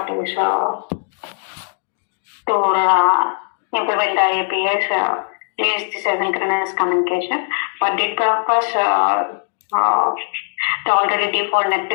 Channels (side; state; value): right; silent; digital silence